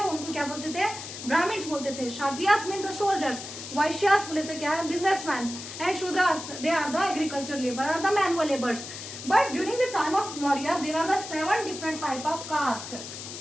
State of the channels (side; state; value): left; noise; hiss, 10 dB below the sound